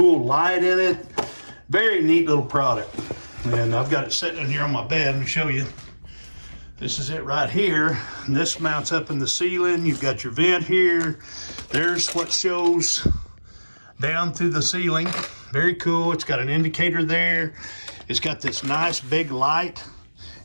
light in it. Very neat little product. And I've got it sitting in here on my bed. Let me show you. This is it right here. And this mounts up in the ceiling. You've got your vent here. There's what shows down through the ceiling. Very cool. It's got an indicator there. It's got this nice big light.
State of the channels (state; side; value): inverted; both; correlation -1.00